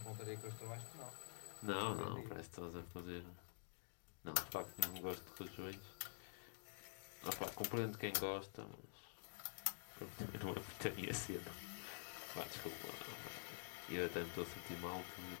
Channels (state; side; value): silent; right; digital silence